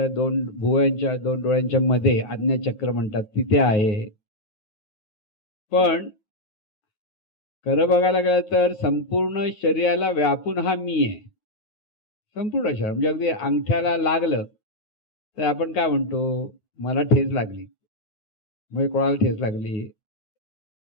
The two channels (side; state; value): right; late; 9.3 ms